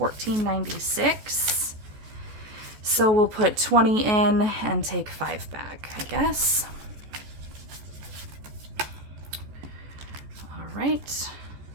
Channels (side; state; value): left; late; 14 ms